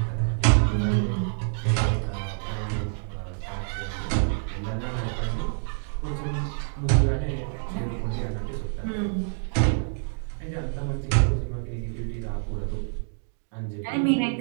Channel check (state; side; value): silent; left; digital silence